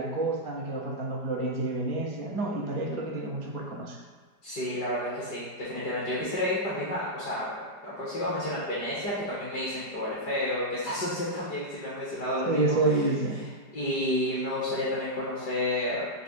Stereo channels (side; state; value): right; late; 4.9 ms